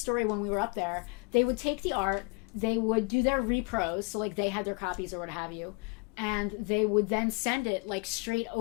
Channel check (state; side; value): quieter; right; 30.5 dB